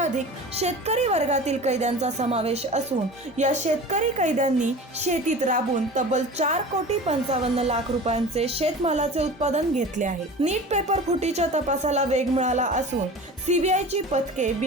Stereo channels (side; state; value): both; normal; correlation 0.36